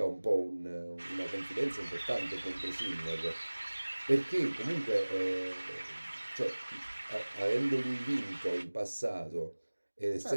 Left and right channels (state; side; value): inverted; both; correlation -1.00